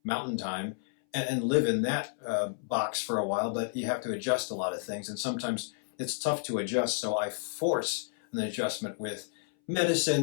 Mountain Time and live in that box for a while, but you have to adjust a lot of things, and sometimes it's tough to adjust, so I force an adjustment with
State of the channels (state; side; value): silent; right; 57 dB below the other